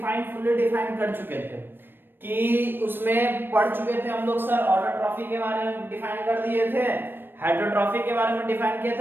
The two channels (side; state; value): left; late; 0.097 ms